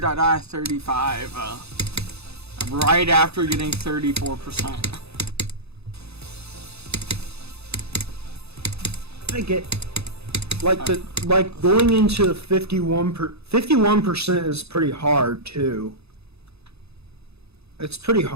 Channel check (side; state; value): left; late; 0.79 ms